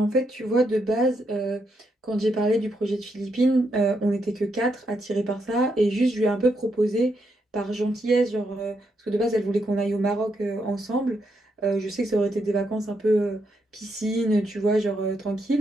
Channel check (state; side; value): normal; both; correlation 0.79